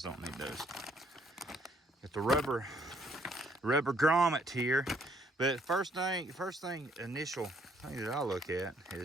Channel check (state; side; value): normal; both; correlation 0.66